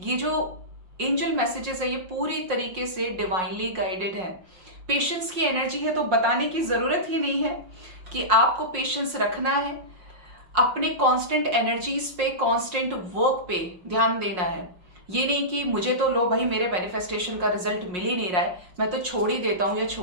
जो एंजल मैसेजेस है ये पूरी तरीके से डिवाइनली गाइडेड है। पेशेंस की एनर्जी है, तो बताने की जरूरत ही नहीं है कि आपको पेशेंस रखना है, अपने कांस्टेंट एनर्जीज पे, कांस्टेंट वर्क पे ध्यान देना है। ये नहीं कि मुझे तो लो भाई, मेरे मैनिफेस्टेशन का रिजल्ट मिल ही नहीं रहा है, मैं तो छोड़ ही देता हूं या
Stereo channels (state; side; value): late; left; 5.5 ms